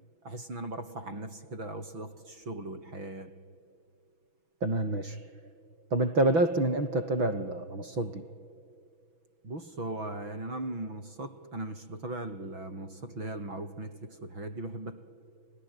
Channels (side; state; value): left; late; 6.1 ms